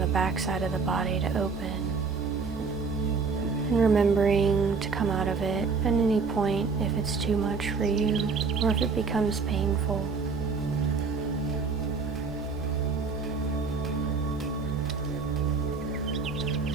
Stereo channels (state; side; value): quieter; left; 4.8 dB